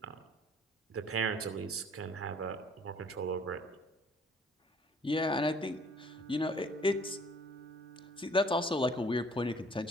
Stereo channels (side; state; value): both; normal; correlation 0.55